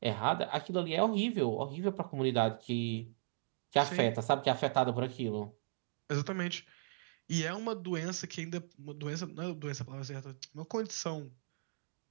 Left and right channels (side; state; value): left; silent; digital silence